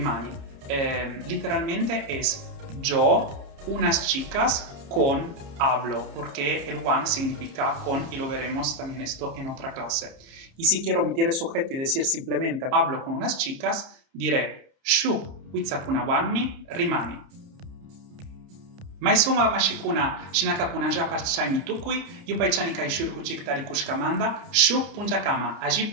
Literalmente es yo, unas chicas, con hablo, porque el one significa con y lo veremos también esto en otra clase. Y si quiero omitir el sujeto y decir simplemente hablo con unas chicas, diré shuk kwitzakunawanni rimani. Maisuma mashikuna shinakakuna ja parchai mitukui, yupaichani kai shurku chiktari kushkamanda, shuk punjakama, aji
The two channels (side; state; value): left; late; 29 ms